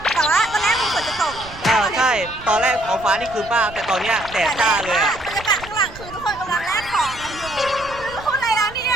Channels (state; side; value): noise; right; rumble, 17 dB below the sound